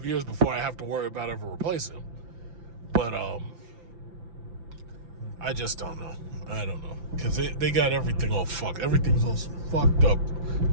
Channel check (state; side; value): late; left; 5.9 ms